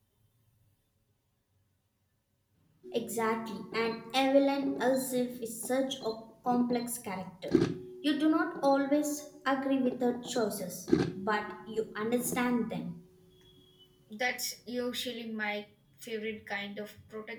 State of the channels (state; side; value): identical; both; correlation 1.00